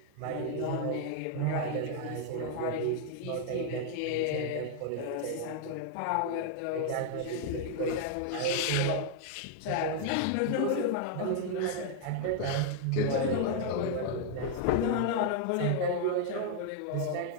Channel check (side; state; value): both; different; correlation 0.00